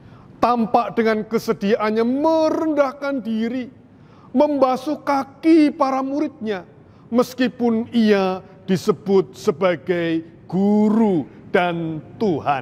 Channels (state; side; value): identical; both; correlation 1.00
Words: tampak dengan kesediaannya merendahkan diri, membasuh kaki para muridnya, meskipun ia disebut sebagai guru dan